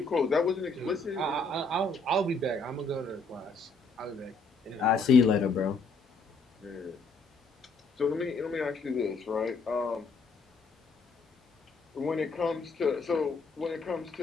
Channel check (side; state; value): right; quieter; 3.6 dB